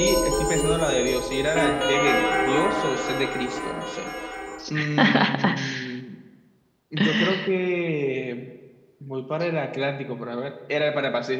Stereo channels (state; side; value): identical; both; correlation 1.00